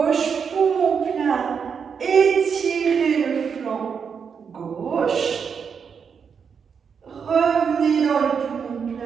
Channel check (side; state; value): left; quieter; 6.5 dB